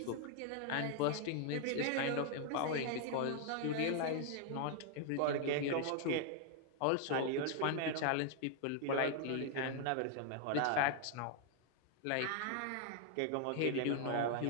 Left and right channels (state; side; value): different; both; correlation 0.00